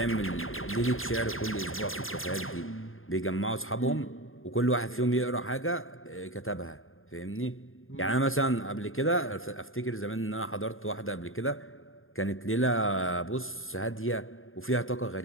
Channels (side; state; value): right; late; 0.60 ms